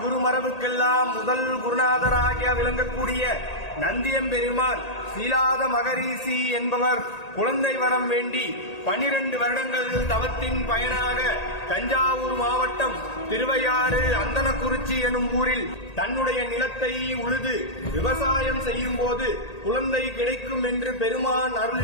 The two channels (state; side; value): late; right; 1.8 ms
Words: குருமரபுக்கெல்லாம் முதல் குருநாதராக விளங்கக்கூடிய நந்தியம்பெருமான் சீலாத மகரிஷி என்பவர் குழந்தை வரம் வேண்டி 12 வருடங்கள் தவத்தின் பயனாக தஞ்சாவூர் மாவட்டம் திருவையாறு அந்தனக்குறிச்சி எனும் ஊரில் தன்னுடைய நிலத்தை உழுது விவசாயம் செய்யும் போது குழந்தை கிடைக்கும் என்று பெருமான்